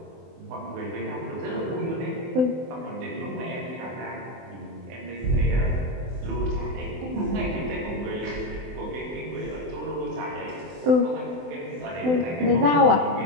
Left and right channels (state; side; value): late; left; 24 ms